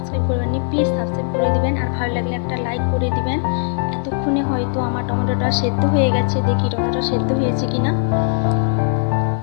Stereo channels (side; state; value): right; silent; 61 dB below the other